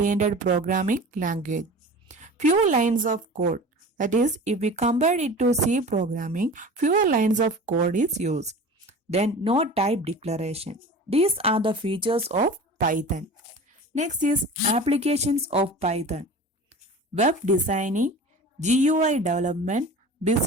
programming language. Few lines of code. That is, if we compare it to C programming, fewer lines of code is used. Then no type declaration. These are the features of Python. Next is applications of Python. Web designing, GUI development,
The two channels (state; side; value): normal; both; correlation 0.37